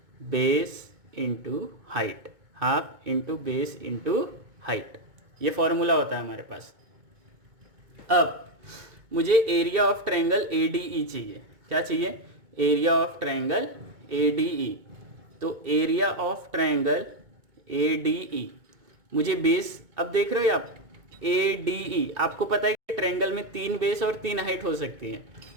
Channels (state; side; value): late; left; 2.2 ms